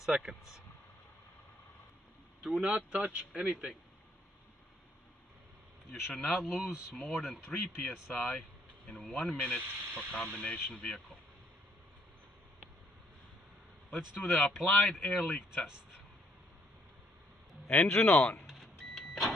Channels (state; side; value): normal; both; correlation 0.68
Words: Do not touch anything. You should not lose more than 3 psi in 1 minute for combination vehicle. Let's do the applied air leak test. Engine on.